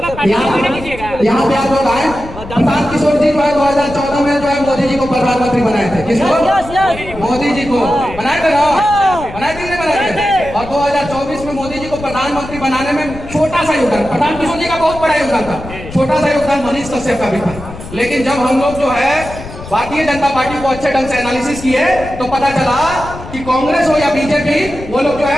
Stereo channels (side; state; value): left; noise; rumble, 13 dB below the sound